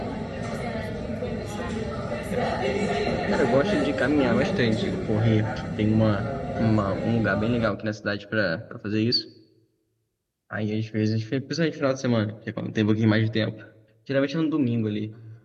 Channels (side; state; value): both; identical; correlation 1.00